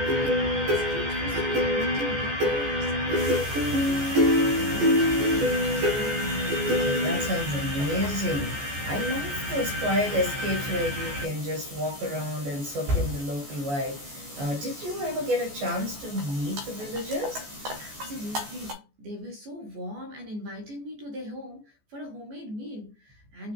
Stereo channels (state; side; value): late; left; 14 ms